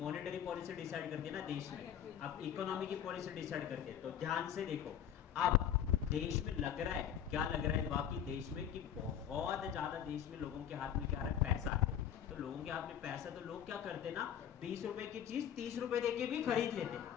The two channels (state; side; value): quieter; right; 9.5 dB